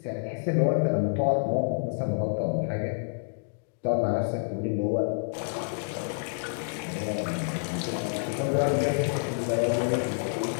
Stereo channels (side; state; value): right; silent; digital silence